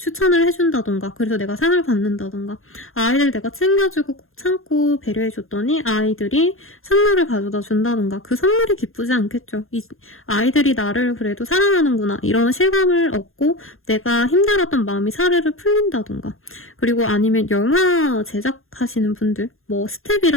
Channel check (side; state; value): right; late; 0.61 ms